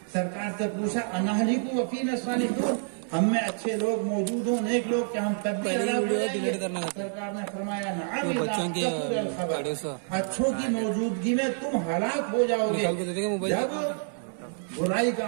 سرکار سے پوچھا انالی کو وکیل الصالحون، ہم میں اچھے لوگ موجود ہوں، نیک لوگ، کیا ہم تب بھی سرکار نے فرمایا اچھوں کی موجودگی میں تم ہلاک ہو جاؤ گے جب برائی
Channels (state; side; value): silent; left; 59 dB below the other